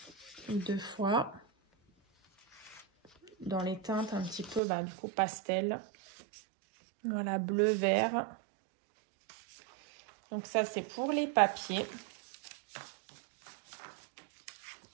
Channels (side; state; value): left; drops out; at 4.6 s